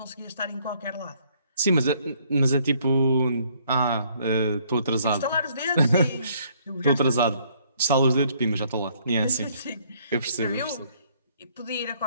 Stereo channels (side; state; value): both; inverted; correlation -0.65